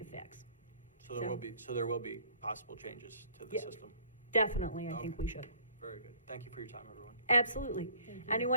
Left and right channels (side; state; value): both; inverted; correlation -0.55